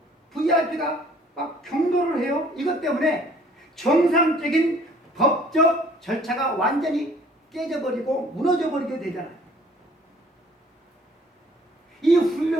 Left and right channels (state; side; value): normal; both; correlation 0.56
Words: VIP가 막 경로를 해요. 이것 때문에 정상적인 법적 절차가 완전히 깨져버리고 무너져버리게 되잖아요. 이